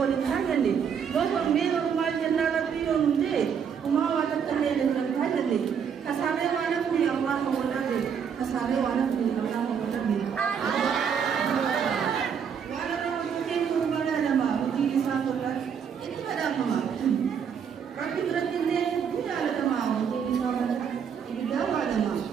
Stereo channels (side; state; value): left; quieter; 7.3 dB